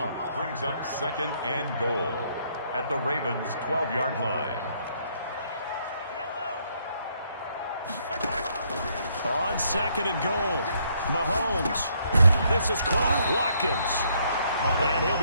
Brings up 2nd and goal at the Ravens' 12-yard line. On 2nd and goal, Mahomes. This is caught. Watkins. And he'll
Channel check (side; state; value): both; inverted; correlation -0.70